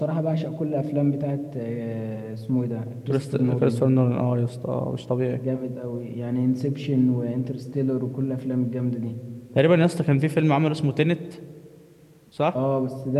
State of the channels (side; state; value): both; identical; correlation 1.00